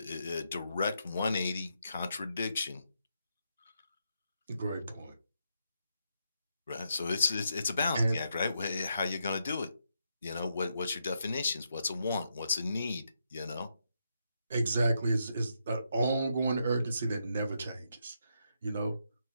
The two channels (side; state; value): both; inverted; correlation -0.80